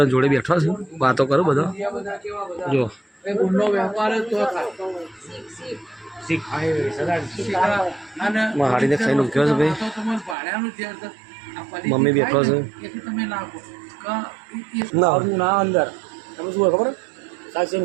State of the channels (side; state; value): left; drops out; at 10.4 s